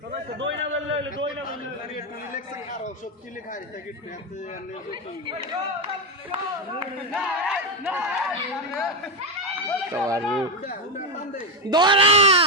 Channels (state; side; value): normal; both; correlation 0.07